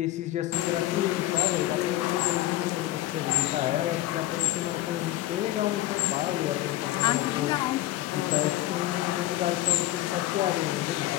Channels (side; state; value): right; quieter; 15.2 dB